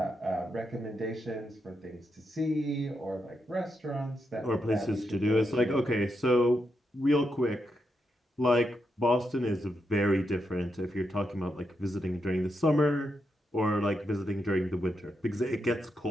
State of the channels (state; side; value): normal; both; correlation 0.83